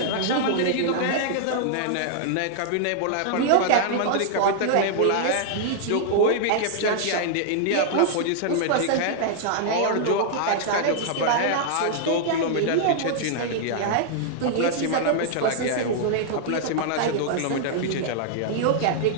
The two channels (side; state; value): both; different; correlation -0.01